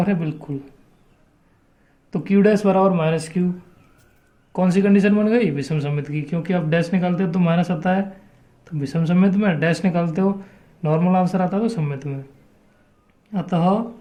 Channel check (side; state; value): both; identical; correlation 1.00